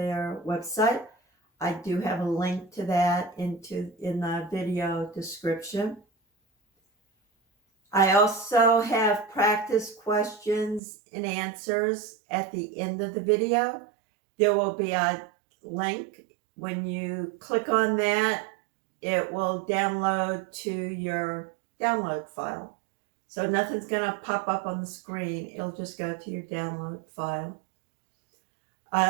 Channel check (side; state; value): left; drops out; at 10.8 s